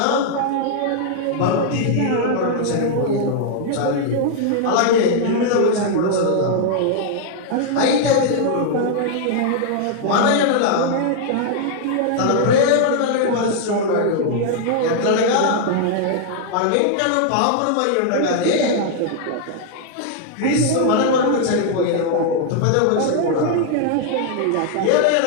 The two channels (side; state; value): both; different; correlation 0.00